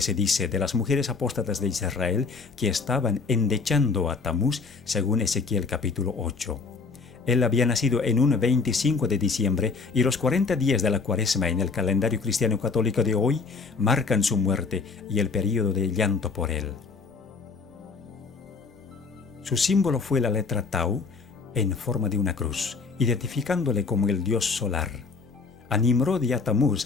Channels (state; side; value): quieter; right; 4.6 dB